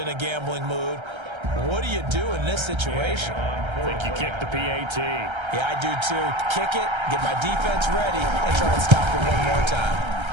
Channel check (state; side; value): late; left; 1.3 ms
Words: a gambling mood. What do you do in this situation? I think you kick the PAT. Yeah, I do too. Kick it, get my defense ready, and try and stop it one more time.